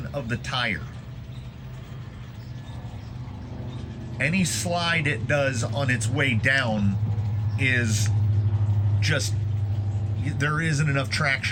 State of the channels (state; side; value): identical; both; correlation 1.00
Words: of the tire. Any slide it does on its way down is just, there isn't enough